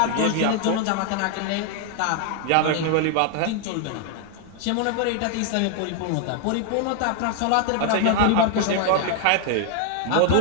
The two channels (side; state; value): both; different; correlation 0.00